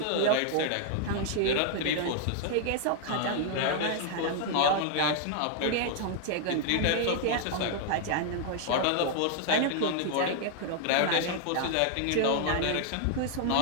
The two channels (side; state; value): both; different; correlation 0.00